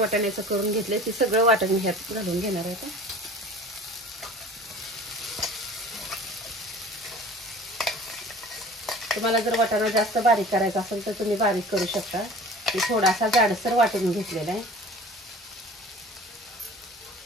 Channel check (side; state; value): both; normal; correlation 0.43